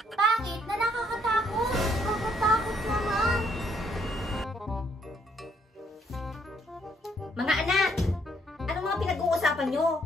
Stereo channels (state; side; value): normal; both; correlation 0.69